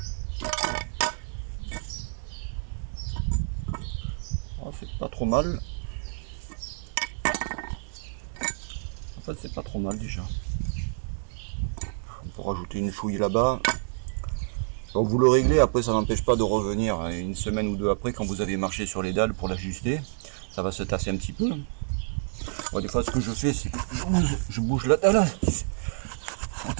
Oh, c'est pas trop mal. En fait, c'est pas trop mal déjà. On peut rajouter une chouille là-bas. Donc vous le réglez, après ça n'empêche pas de revenir une semaine ou deux après quand vous avez marché sur les dalles pour l'ajuster. Ça va se tasser un petit peu. Bon, des fois ce que je fais c'est que je bouge la dalle. On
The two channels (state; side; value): silent; left; digital silence